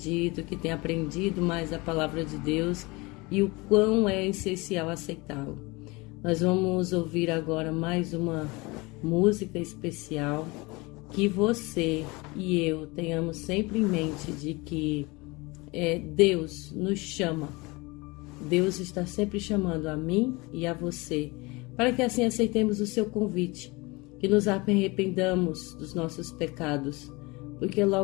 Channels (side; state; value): right; quieter; 24.8 dB